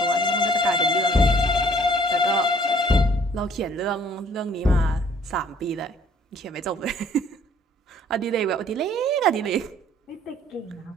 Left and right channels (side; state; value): both; normal; correlation 0.58